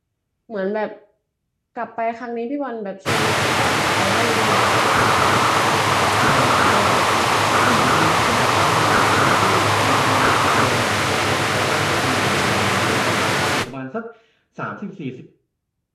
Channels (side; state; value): both; identical; correlation 1.00